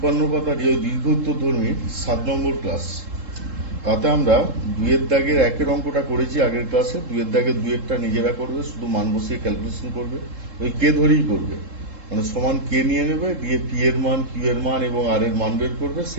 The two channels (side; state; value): left; late; 3.7 ms